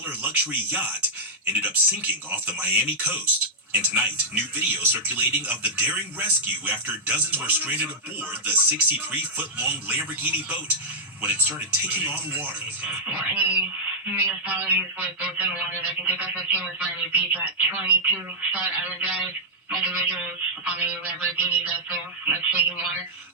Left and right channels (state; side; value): normal; both; correlation -0.09